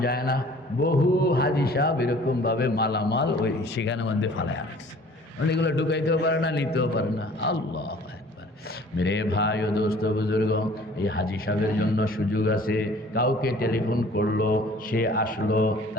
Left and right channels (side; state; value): both; normal; correlation 0.51